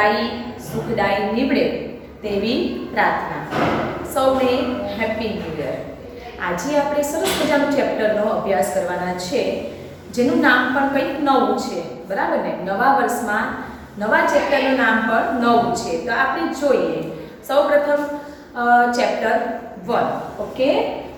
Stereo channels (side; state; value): both; identical; correlation 1.00